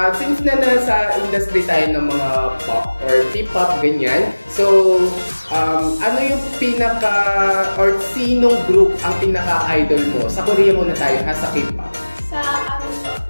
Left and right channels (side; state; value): both; inverted; correlation -1.00